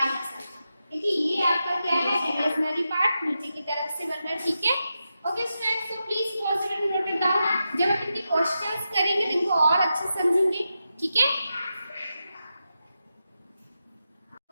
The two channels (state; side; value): inverted; both; correlation -0.89